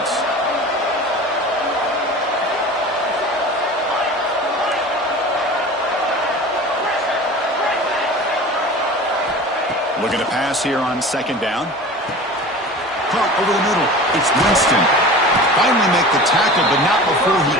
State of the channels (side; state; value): both; normal; correlation 0.37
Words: Looking to pass here on second down. Caught over the middle. It's Winston. Finally make the tackle, but not before he